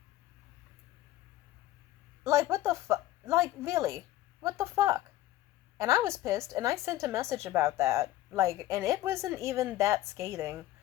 Like, what the fuck? Like, really? What the fuck? And I was pissed, and I sent a message about that. Like, and it wasn't even that scathing.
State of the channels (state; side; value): quieter; right; 15.2 dB